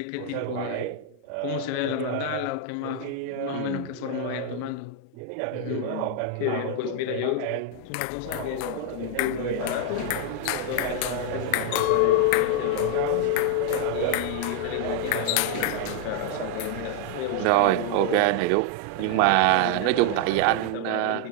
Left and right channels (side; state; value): both; different; correlation 0.00